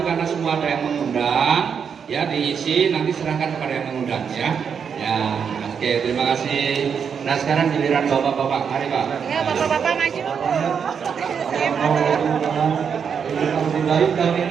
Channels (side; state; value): left; quieter; 6.9 dB